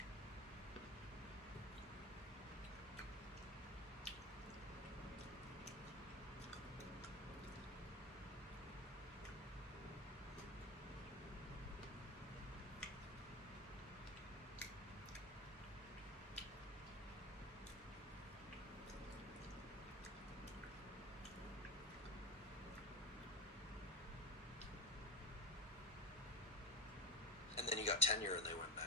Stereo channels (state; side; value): normal; both; correlation 0.22